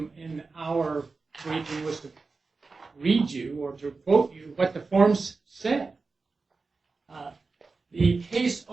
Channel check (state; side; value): quieter; left; 4.1 dB